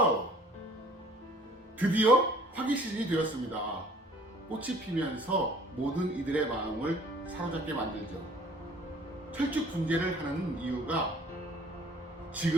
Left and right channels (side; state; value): both; normal; correlation 0.53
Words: 드디어 화기 시즌이 되었습니다. 꽃이 피면서 모든 이들의 마음을 사로잡게 만들죠. 철쭉 분재를 하는 이유가